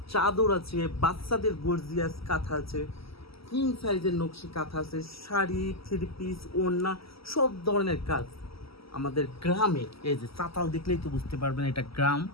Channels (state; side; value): late; right; 0.76 ms